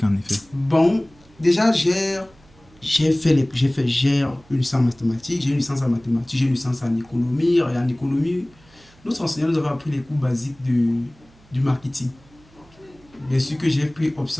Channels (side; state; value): right; noise; hum, 28 dB below the sound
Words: en effet? Bon, déjà, j'ai une licence en mathématiques, j'ai une licence en mathématiques, j'ai une licence en économie. Et en économie, notre enseignant nous avait appris les cours basiques du marketing. Bien sûr que j'ai pris